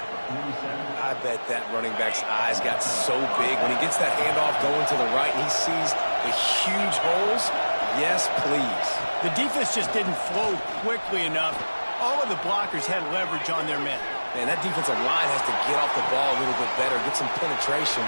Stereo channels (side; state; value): both; inverted; correlation -1.00